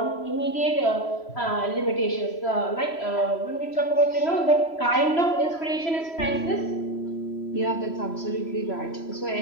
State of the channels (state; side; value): late; right; 3.0 ms